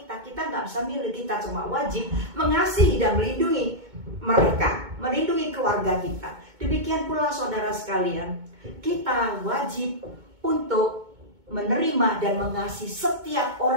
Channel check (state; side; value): late; left; 2.2 ms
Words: Kita nggak bisa milih, kita cuma wajib mengasihi dan melindungi mereka, melindungi keluarga kita. Demikian pula saudara sekalian, kita wajib untuk menerima dan mengasihi setiap